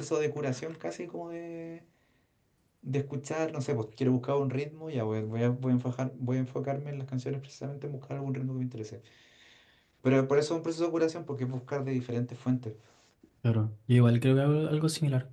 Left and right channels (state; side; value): identical; both; correlation 1.00